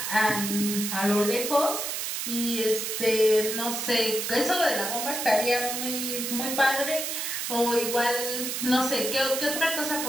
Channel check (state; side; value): noise; right; hiss, 3 dB below the sound